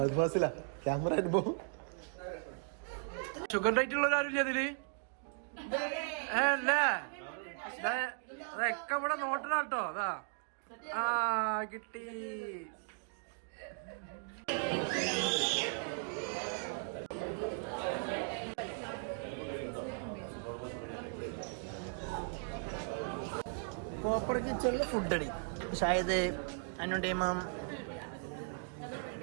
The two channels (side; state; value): left; silent; 53 dB below the other